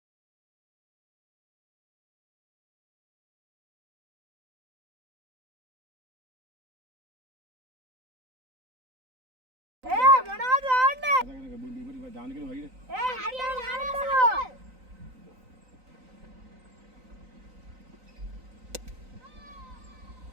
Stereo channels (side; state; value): left; late; 3.9 ms